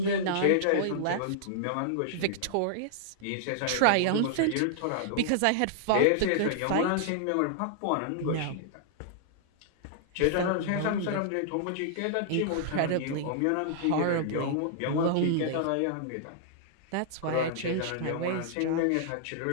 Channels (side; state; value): both; different; correlation -0.01